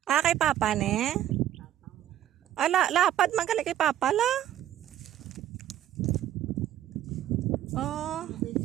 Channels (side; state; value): left; quieter; 12.0 dB